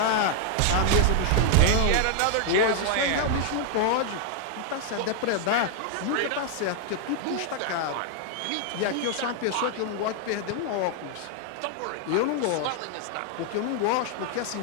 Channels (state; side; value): different; both; correlation 0.00